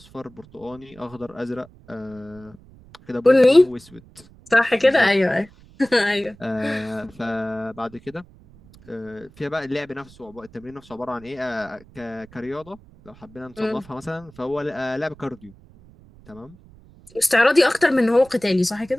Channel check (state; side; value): noise; right; rumble, 24 dB below the sound